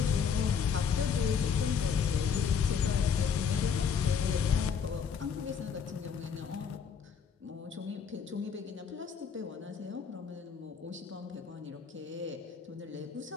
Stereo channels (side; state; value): right; quieter; 6.7 dB